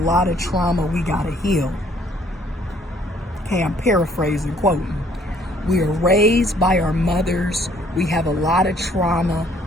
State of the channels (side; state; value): both; normal; correlation 0.62